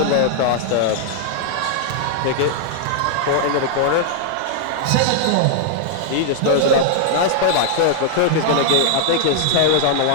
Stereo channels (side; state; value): both; different; correlation 0.00